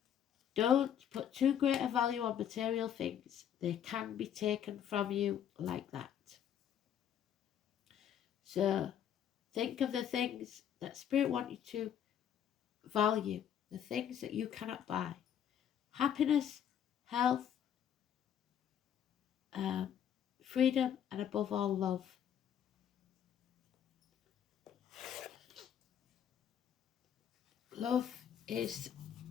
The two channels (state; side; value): quieter; right; 9.4 dB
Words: Don't put too great a value on material things. They can be taken from you like that. So think of the things that Spirit wants you to value, the things that you cannot buy. Happiness, health, freedom, and above all, love. Love